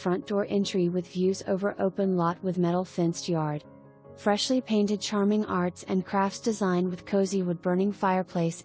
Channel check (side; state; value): both; identical; correlation 1.00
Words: door entry with views over open lot with metal fenced yard. Freshly painted charming arts and crafts design with cozy wood-burning fireplace